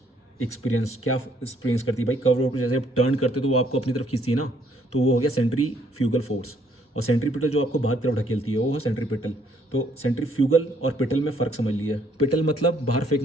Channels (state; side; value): normal; both; correlation 0.66